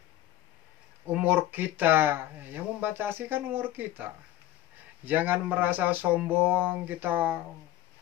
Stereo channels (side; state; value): right; quieter; 14.3 dB